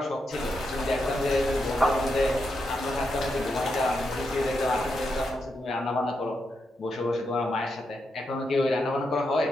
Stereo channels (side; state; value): both; normal; correlation 0.84